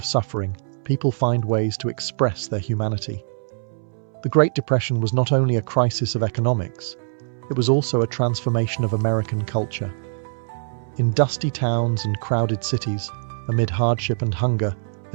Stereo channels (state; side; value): silent; left; 63 dB below the other